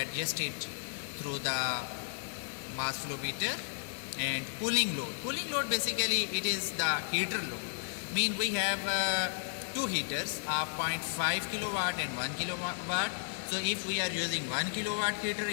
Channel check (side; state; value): right; silent; digital silence